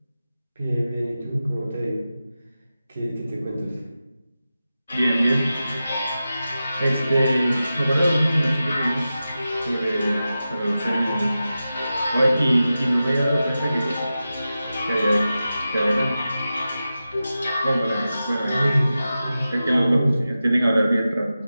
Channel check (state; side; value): inverted; both; correlation -0.93